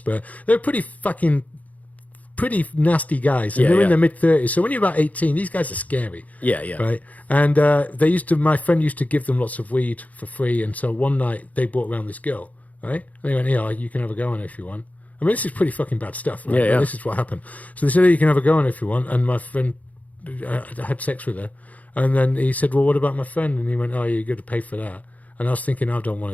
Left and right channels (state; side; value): late; right; 0.073 ms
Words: They were pretty nasty guys, and Yeah, they were in yeah. their mid-30s. So when you're about 18, these guys are scary. Yeah, yeah. Right? And my friend used to give them lots of weed for free, and so one night they brought around this girl, right? And they went, "Yeah, you can have a go on it if you want." I mean, this is pretty fucking bad stuff, right? Yeah, yeah. But this is what happened. So they said, "Oh, you can have a go on it if you want," and my friend had sex with her. And then he said, "Well, what about my friend?" And he went, "Oh, you're going to pay for that." And I was thinking, I don't